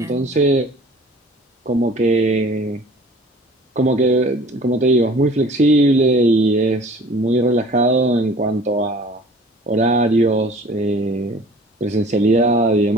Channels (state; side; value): normal; both; correlation 0.47